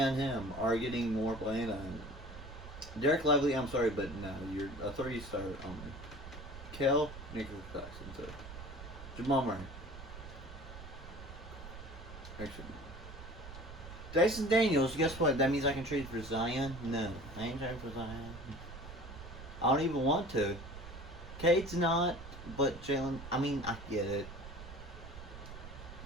him are getting more playing time. Derek Lively, I'm sorry, but no, you're a 3-star only. Kel, Nicholas Jackson, so. Jamal Murray. Actually. Dyson Daniels, guess what? That means I can trade for Zion? No, I ain't trading for Zion. I don't even want to. Cade's not, but Jalen, I mean, I get it.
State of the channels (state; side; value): noise; right; rumble, 13 dB below the sound